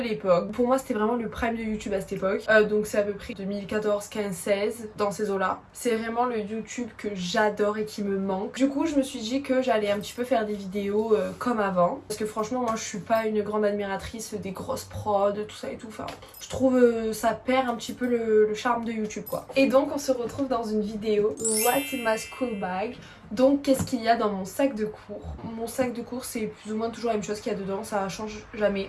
Pour moi c'était vraiment le prime de YouTube à cette époque. Donc c'est à peu près 2014, 15, 16 dans ces eaux-là. C'est vraiment le YouTube que j'adore et qui me manque. Du coup je me suis dit que j'allais un petit peu faire des vidéos comme avant. Parce que franchement moi je suis pas une grande admiratrice des grosses prods, tout ça et tout. Enfin, je trouve ça perd un petit peu le charme de YouTube quoi. Et donc on se retrouve dans une vidéo What's in my school bag. Donc qu'est-ce qu'il y a dans mon sac de cours? Mon sac de cours c'est plus ou moins toujours la même chose qu'il y a dedans, ça change jamais.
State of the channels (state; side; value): identical; both; correlation 1.00